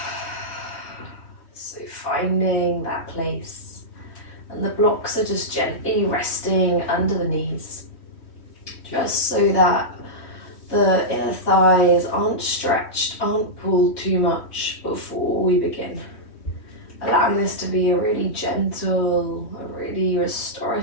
So finding that place. And the blocks are just gently resting under the knees. Just so that the inner thighs aren't stretched, aren't pulled too much before we begin. Allowing this to be a really gentle, a really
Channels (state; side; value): late; right; 3.1 ms